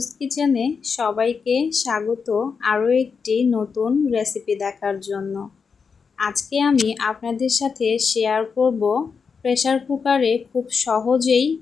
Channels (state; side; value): quieter; right; 5.6 dB